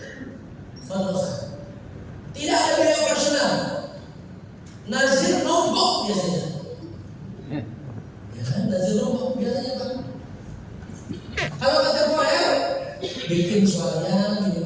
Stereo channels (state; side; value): identical; both; correlation 1.00